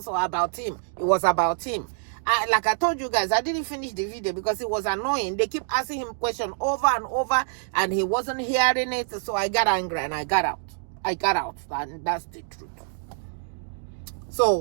about him. It was about him. Like I told you guys, I didn't finish the video because it was annoying. They keep asking him questions over and over, and he wasn't hearing it. So I got angry and I got out, and that's the truth.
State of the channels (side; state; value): left; silent; 61 dB below the other